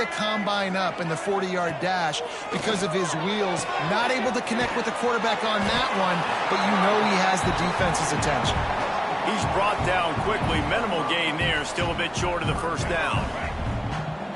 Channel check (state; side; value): identical; both; correlation 1.00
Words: combine up in the 40-yard dash because of his wheels. Not able to connect with the quarterback on that one, but you know he has the defense's attention. He's brought down quickly. Minimal gain there, still a bit short of the first down.